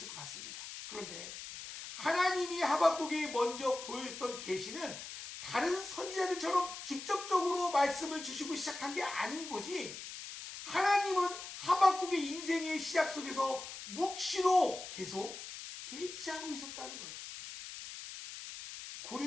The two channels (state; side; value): noise; left; hiss, 10 dB below the sound